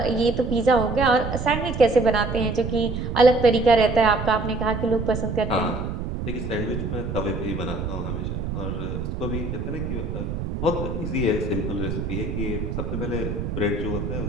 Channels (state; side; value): noise; right; rumble, 4 dB below the sound